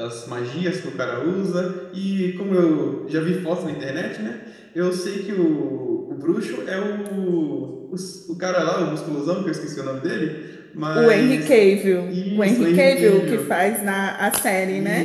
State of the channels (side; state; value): both; identical; correlation 1.00